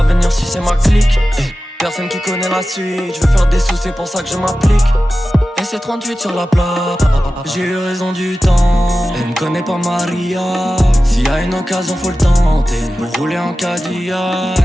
venir si c'est ma clique. Personne qui connaît la suite, je veux faire des sous, c'est pour ça que je m'applique. Et c'est 38 sur la plate, j'ai eu raison du temps. Elle me connaît pas Maria, s'il y a une occasion faut le tenter. Pour rouler en Cadillac,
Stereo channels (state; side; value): normal; both; correlation 0.95